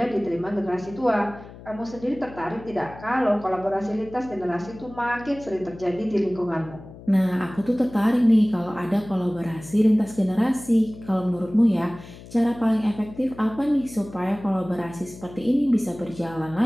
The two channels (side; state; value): left; noise; hum, 17 dB below the sound